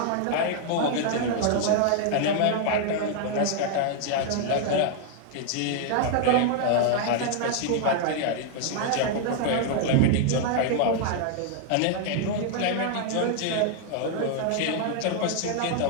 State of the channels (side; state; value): both; different; correlation 0.00